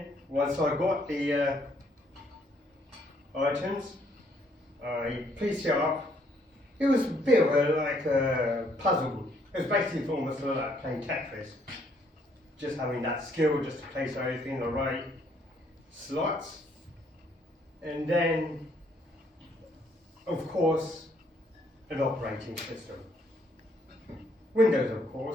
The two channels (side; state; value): both; normal; correlation 0.68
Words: once I got the items, I pieced it up. It was a bit of a puzzle. It was basically almost like playing Tetris. Just having that skill just to place everything in the right slots. And then, of course, an operating system. Windows, of